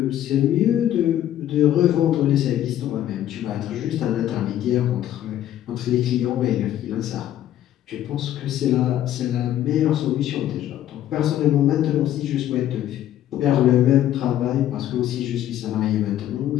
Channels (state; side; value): quieter; right; 12.0 dB